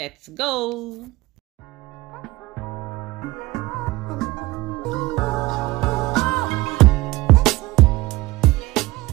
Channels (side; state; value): left; quieter; 19.8 dB